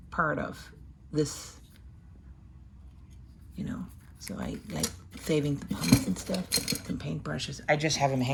part of this, you know, so I like saving the pumps and stuff and paintbrushes. I just have them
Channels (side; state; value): both; identical; correlation 1.00